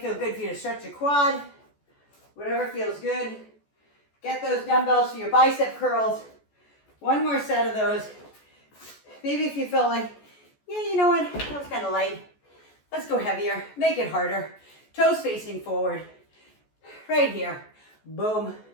good for you to stretch your quad. Whatever feels good. Get those dumbbells for your bicep curls. One more set of those. Maybe if you feel like, yeah, you know what, that was kind of light. Let's go heavier, make it harder. Toes facing forward. Right here, boom,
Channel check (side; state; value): right; late; 14 ms